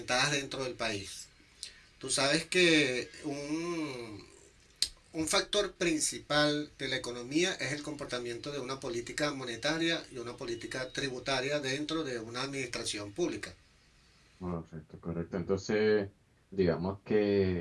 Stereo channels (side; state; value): both; identical; correlation 1.00